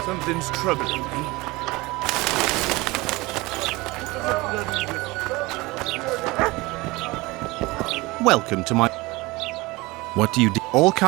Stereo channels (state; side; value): quieter; left; 22.1 dB